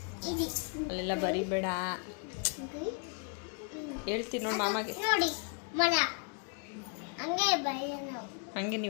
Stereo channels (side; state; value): right; quieter; 38.7 dB